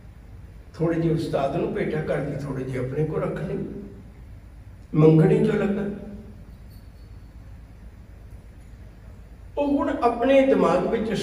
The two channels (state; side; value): identical; both; correlation 1.00